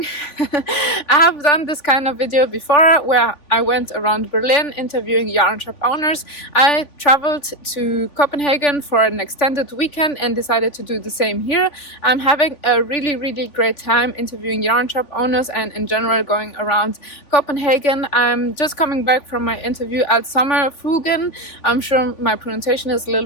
I have done this kind of video before where I went around Berlin interviewing yarn shop owners. I traveled to Copenhagen for an extended weekend and decided to do the same here. I'm having a really great time interviewing yarn shop owners and in general going around Copenhagen. I'm just coming back from my interview at Sommerfuglen. I'm sure my pronunciation is a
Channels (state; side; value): late; right; 3.4 ms